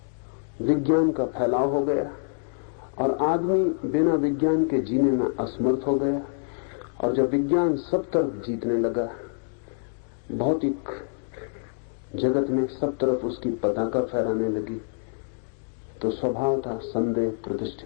विज्ञान का फैलाव हो गया, और आदमी बिना विज्ञान के जीने में असमर्थ हो गया, और जब विज्ञान सब तरफ जीतने लगा, भौतिक जगत में सब तरफ उसकी पताका फहराने लगी, तो स्वभाव था संदेह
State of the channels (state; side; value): silent; right; digital silence